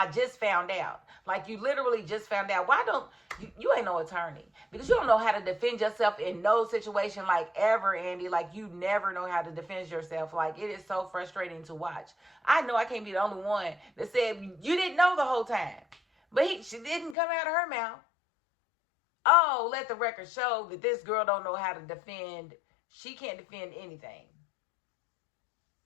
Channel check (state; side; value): drops out; right; at 17.2 s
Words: just found out. Like, you literally just found out. Why don't you ain't no attorney, because you don't know how to defend yourself in no situation, like, ever, Andy. Like, you never know how to defend yourself. Like, it is so frustrating to watch. I know I can't be the only one that said you didn't know the whole time. But she didn't come out of her mouth. Oh, let the record show that this girl don't know how to defend. She can't defend anything.